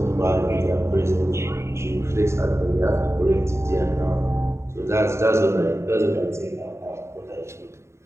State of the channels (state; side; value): late; left; 0.13 ms